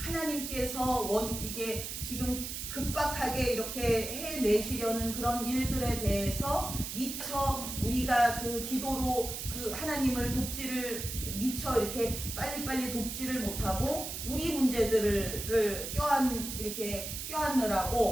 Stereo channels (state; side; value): noise; right; hiss, 6 dB below the sound